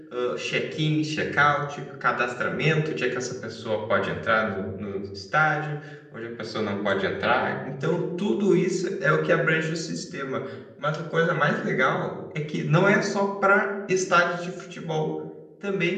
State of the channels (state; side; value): identical; both; correlation 1.00